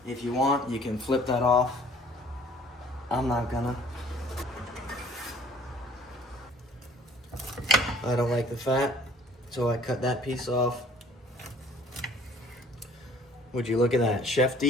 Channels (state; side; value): normal; both; correlation 0.54